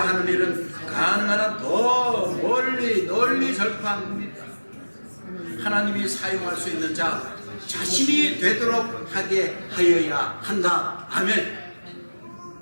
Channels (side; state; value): both; inverted; correlation -1.00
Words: 하는 일은 가능한 한 더 널리 전파합니다. 하나님이 사용할 수 있는 자 자신이 되도록 하게 하여야 한다. 아멘.